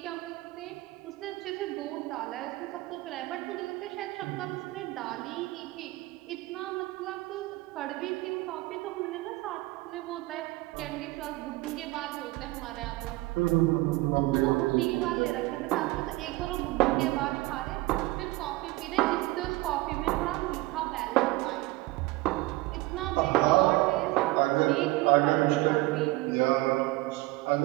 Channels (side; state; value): left; quieter; 20.4 dB